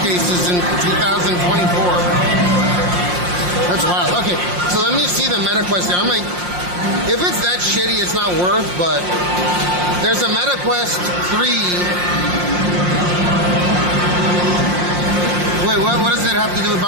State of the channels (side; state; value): left; late; 5.6 ms